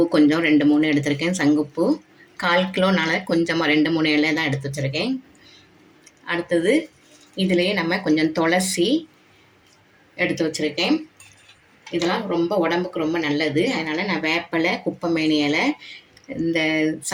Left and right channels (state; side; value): identical; both; correlation 1.00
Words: கொஞ்சம் 2-3 எடுத்திருக்கேன். சங்குப்பூ 1/4 கிலோனால கொஞ்சமாக 2-3 இலை தான் எடுத்து வச்சுருக்கேன். அடுத்தது இதுலேயே நம்ம கொஞ்சம் துளசி எடுத்து வச்சுருக்கேன். இதெல்லாம் ரொம்ப உடம்புக்கு ரொம்ப நல்லது. அதனால் நான் வேப்பிலை, குப்பைமேனி இலை, இந்த